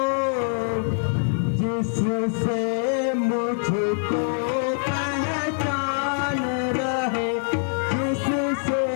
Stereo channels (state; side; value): silent; right; 57 dB below the other